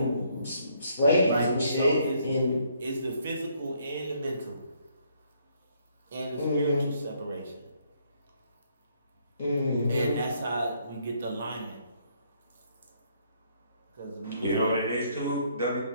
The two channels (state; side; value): inverted; both; correlation -0.68